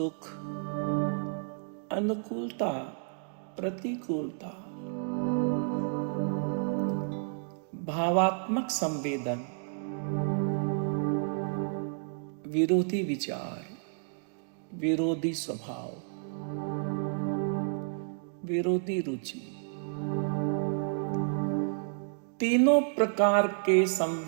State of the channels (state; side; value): silent; left; digital silence